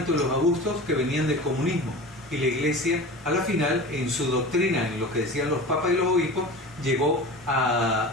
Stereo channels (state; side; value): normal; both; correlation 0.34